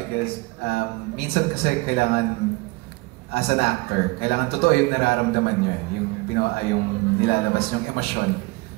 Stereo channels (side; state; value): left; quieter; 24.0 dB